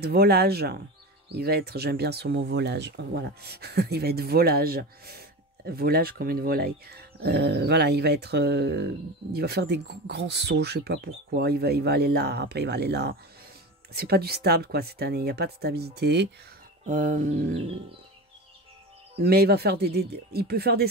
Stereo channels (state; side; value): normal; both; correlation 0.27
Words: volage. Il va être, j'aime bien ce mot volage, voilà. Il va être volage. Volage comme une volaille. Voilà, il va faire des grands sauts, je sais pas pourquoi. Il va aller là, après il va aller là. C'est pas du stable, quoi, cette année. Il n'y a pas de stabilité. Mais il va faire il peut faire des